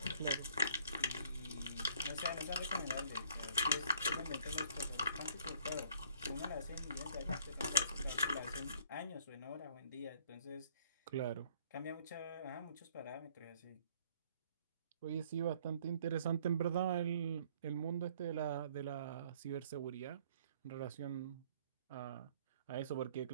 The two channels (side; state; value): both; inverted; correlation -0.60